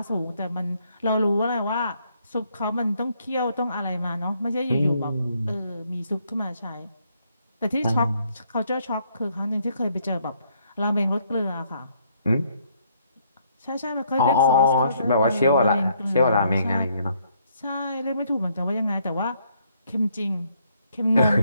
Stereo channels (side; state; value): both; inverted; correlation -0.70